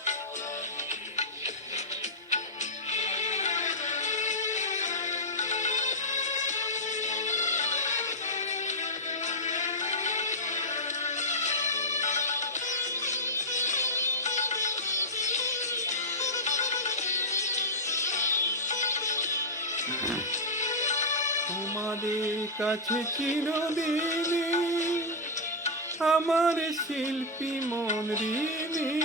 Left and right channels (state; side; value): normal; both; correlation -0.07